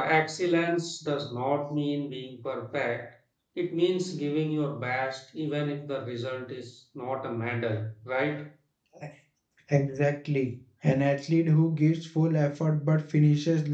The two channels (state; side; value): identical; both; correlation 1.00